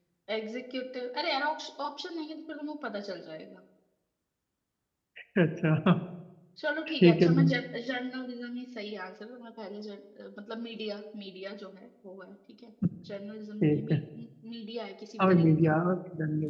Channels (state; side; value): identical; both; correlation 1.00